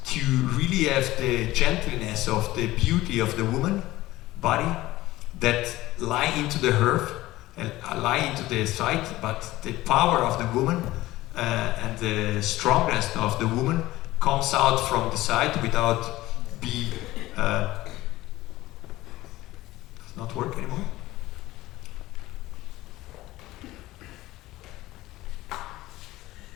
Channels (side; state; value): right; quieter; 17.3 dB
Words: to really have the gentleness of the beauty of the woman body that lie into the earth and lie into the site, but the power of the woman and the strongness of the woman comes out from the side without being does not work anymore.